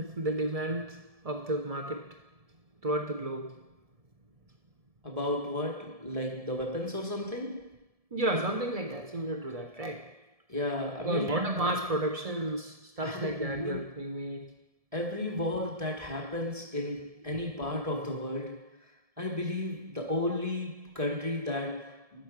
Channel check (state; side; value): late; left; 1.7 ms